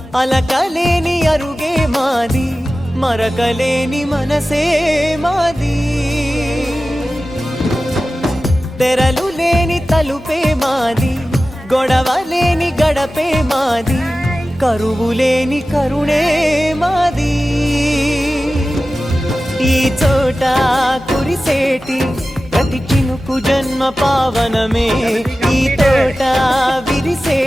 అలకలేని అరుగే మాది, మరకలేని మనసే మాది. తెరలు లేని తలుపే మాది, గొడవలేని గడపే మాది, కరువులేని కరుణే మాది. ఈ చోట కురిసేటి ప్రతి చినుకు జన్మ పావనమే, ఈ తోట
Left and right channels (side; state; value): both; normal; correlation 0.95